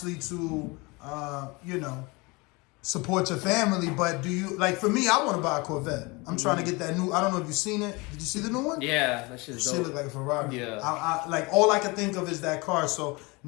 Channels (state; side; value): quieter; right; 25.8 dB